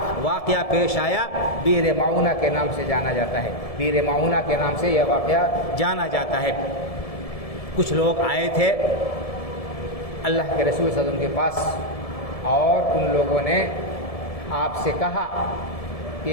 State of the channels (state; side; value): late; right; 1.7 ms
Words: واقعہ پیش آیا، بیر معونہ کے نام سے جانا جاتا ہے. بیر معونہ کے نام سے یہ واقعہ جانا جاتا ہے. کچھ لوگ آئے تھے اللہ کے رسول صلی اللہ علیہ وسلم کے پاس اور ان لوگوں نے آپ سے کہا